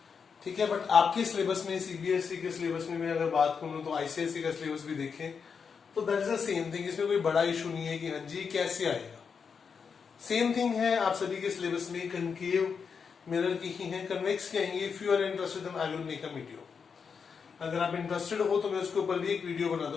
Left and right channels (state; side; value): quieter; right; 6.0 dB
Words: ठीक है, बट आपके सिलेबस में सीबीएसई के सिलेबस में मैं अगर बात करूं तो आईसीएसई का सिलेबस भी देखें तो that is the same thing. इसमें कोई बड़ा इशू नहीं है कि हाँ जी कैसे आएगा। सेम थिंग है आप सभी के सिलेबस में, कनकेव मिरर की ही है, कन्वेक्स की आएंगे। If you are interested then I will make a video. अगर आप इंटरेस्टेड हो तो मैं उसके ऊपर भी एक वीडियो बना